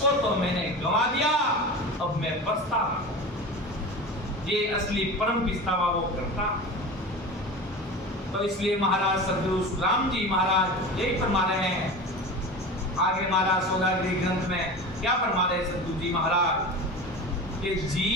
तो मैंने गंवा दिया, अब मैं पछता। ये असली परम पछतावा वो करता। तो इसलिए महाराज सदगुरु राम जी महाराज यही फरमा रहे हैं। आगे महाराज सौदागरी ग्रंथ में क्या फरमा रहे सदगुरु जी महाराज कि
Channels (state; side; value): normal; both; correlation 0.31